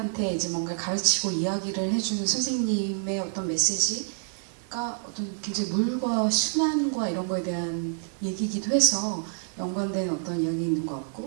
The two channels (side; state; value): left; silent; 56 dB below the other